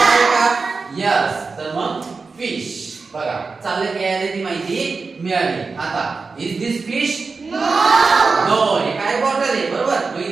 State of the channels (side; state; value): left; quieter; 4.4 dB